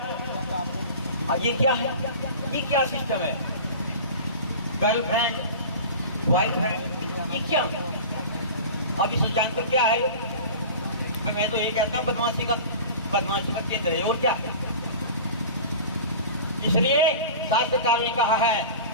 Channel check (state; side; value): inverted; both; correlation -0.36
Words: ये क्या है? ये क्या सिस्टम है? गर्लफ्रेंड, बॉयफ्रेंड, ये क्या है? अब इसे जानते हो क्या है? भाई मैं तो ये कहता हूँ बदमाशी का केंद्र है, और क्या? इसलिए शास्त्रकार ने कहा है